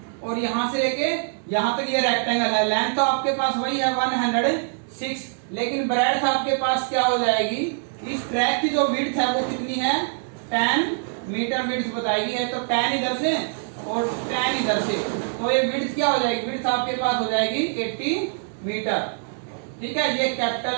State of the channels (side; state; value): left; silent; digital silence